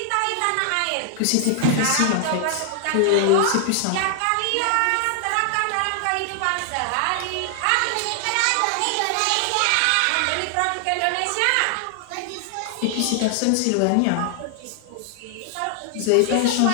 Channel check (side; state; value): both; different; correlation 0.00